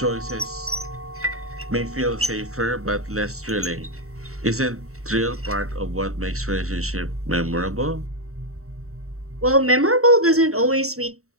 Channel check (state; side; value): late; left; 0.64 ms